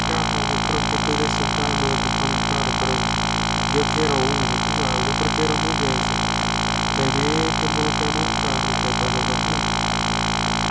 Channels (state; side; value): identical; both; correlation 1.00